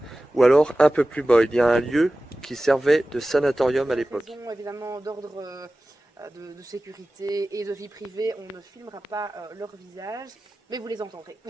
ou alors un peu plus bas. Il y a un lieu qui servait de sanatorium à l'époque. Raison, évidemment, d'ordre de sécurité et de vie privée, on ne filmera pas leur visage, mais vous les entendrez.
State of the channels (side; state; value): both; normal; correlation 0.96